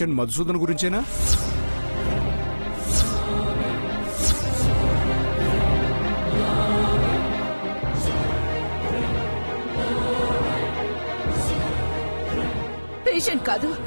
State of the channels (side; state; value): both; inverted; correlation -1.00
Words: మధుసూదన్ గురించేనా? పేషెంట్ కాదు,